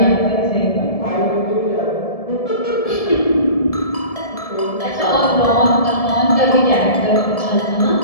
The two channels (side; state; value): right; late; 1.7 ms